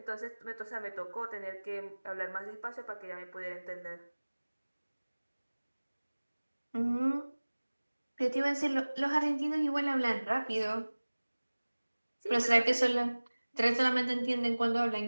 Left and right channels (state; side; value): inverted; both; correlation -1.00